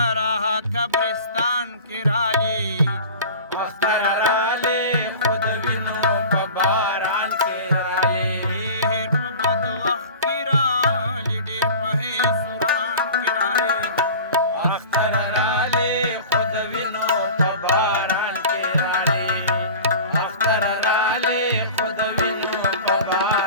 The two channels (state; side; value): inverted; both; correlation -0.37